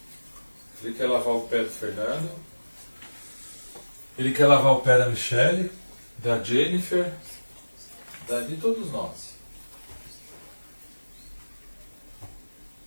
Ele quer lavar o pé do Fernando. Ele quer lavar o pé da Michelle, da Jennifer, de todos nós.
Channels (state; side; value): inverted; both; correlation -1.00